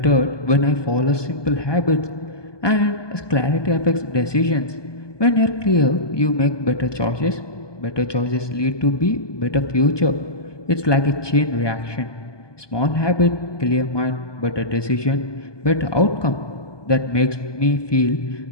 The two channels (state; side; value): late; right; 1.2 ms